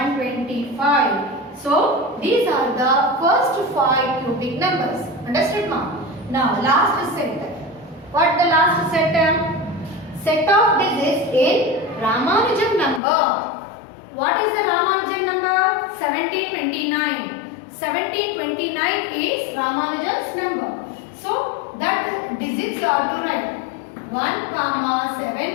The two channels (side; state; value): right; drops out; at 13.0 s